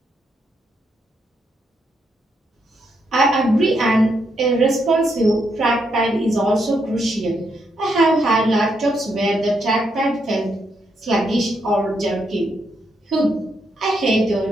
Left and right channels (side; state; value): both; normal; correlation 0.78